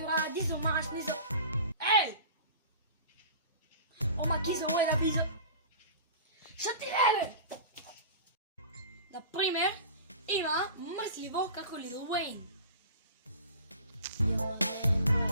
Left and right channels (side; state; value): both; inverted; correlation -0.39